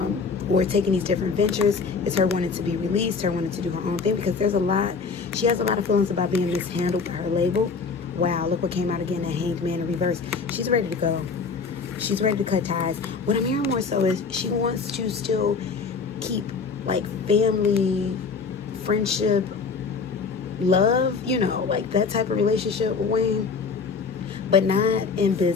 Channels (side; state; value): right; quieter; 4.9 dB